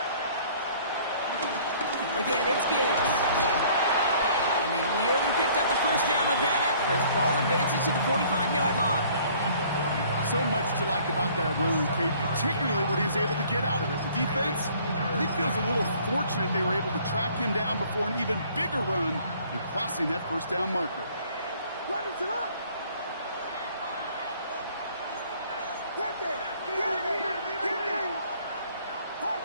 Again, it's Gibbs. And they nearly picked up the 1st down with that effort. Ball advances to the 45-yard line. So much to like about that run, Kate, particularly what he was able to get out of it. The defense, I think, feels a little fortunate they were able to track him down before an even bigger run and crossing that 1st down marker.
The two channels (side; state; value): both; inverted; correlation -0.56